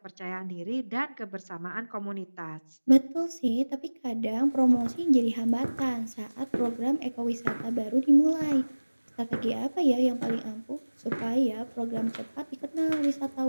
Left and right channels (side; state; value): both; inverted; correlation -1.00